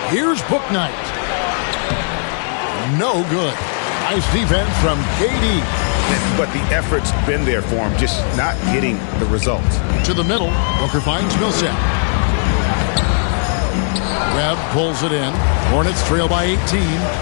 Here's Bouknight. No good. Nice defense from KD. But the effort's been there for him, just not getting the results. To the middle, Booker finds Millsap. Webb pulls it in. Hornets trail by 18.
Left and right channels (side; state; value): right; silent; 66 dB below the other